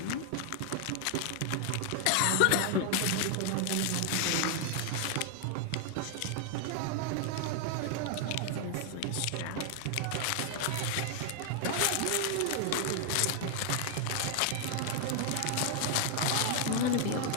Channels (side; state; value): both; different; correlation 0.00